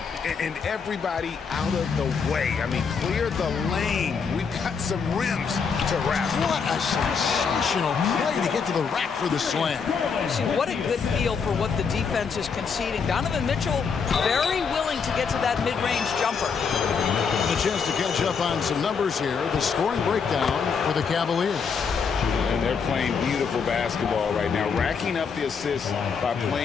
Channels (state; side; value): quieter; right; 5.9 dB